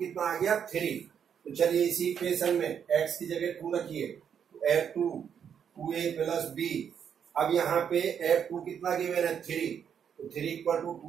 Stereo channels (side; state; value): left; quieter; 8.0 dB